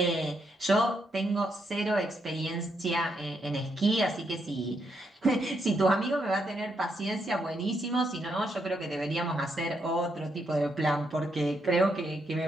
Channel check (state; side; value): normal; both; correlation 0.78